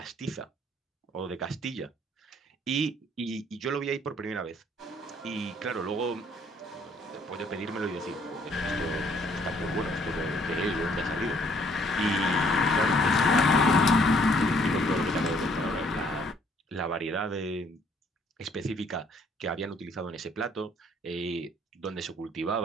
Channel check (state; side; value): normal; both; correlation 0.64